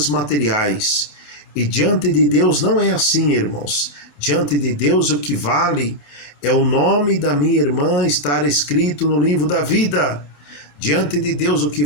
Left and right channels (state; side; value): late; right; 27 ms